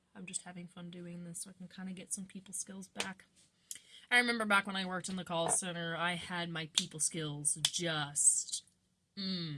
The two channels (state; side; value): identical; both; correlation 1.00